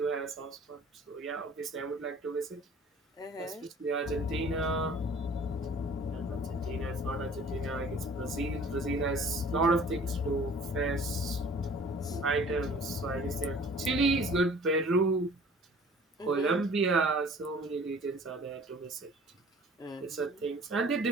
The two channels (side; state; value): both; normal; correlation 0.50